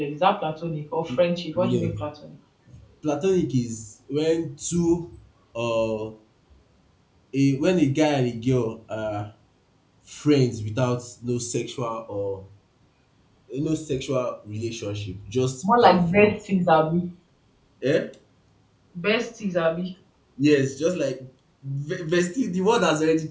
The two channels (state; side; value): identical; both; correlation 1.00